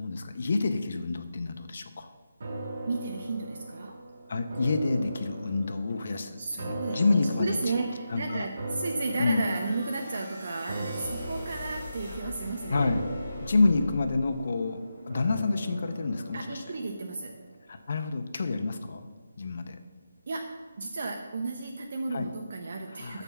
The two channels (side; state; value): both; inverted; correlation -0.88